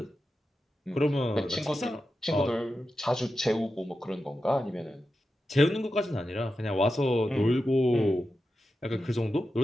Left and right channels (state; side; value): normal; both; correlation 0.90